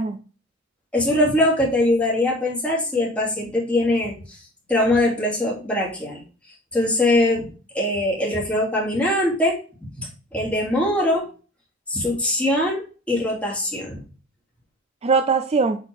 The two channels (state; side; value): normal; both; correlation 0.40